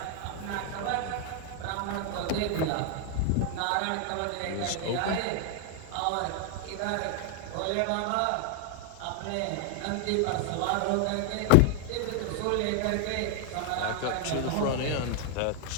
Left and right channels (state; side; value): different; both; correlation 0.00